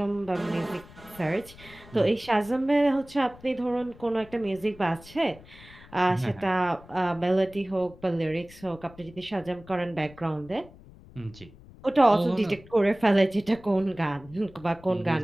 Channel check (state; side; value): noise; left; rumble, 21 dB below the sound